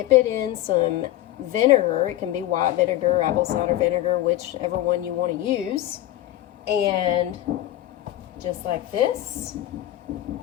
it in some vinegar. It can be white vinegar, apple cider vinegar, whichever one you want to use. And just like this,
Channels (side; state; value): right; quieter; 14.2 dB